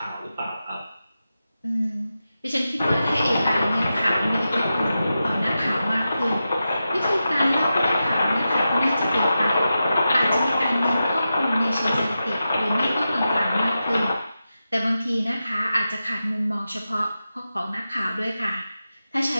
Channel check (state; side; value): inverted; both; correlation -0.91